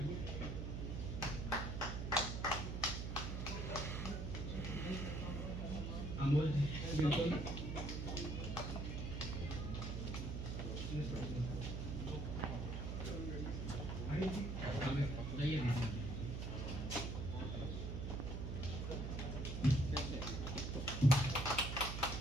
अमोल जी बिल्कुल। अरे जी आइए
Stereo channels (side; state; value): right; noise; hum, 3 dB below the sound